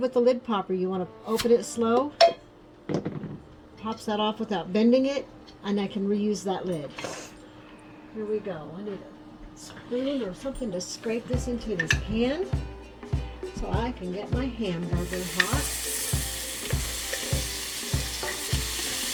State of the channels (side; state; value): both; identical; correlation 1.00